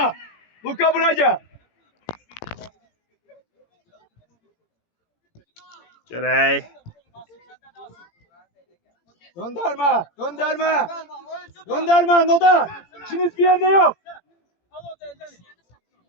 Luka buraya gel. görək. Gönderme. Gönderme. Gönderme Nodar. İkiniz bir yerde yok. al o da elden.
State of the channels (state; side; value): late; right; 17 ms